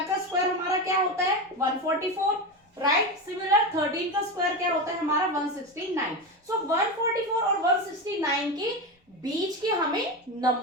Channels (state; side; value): normal; both; correlation 0.18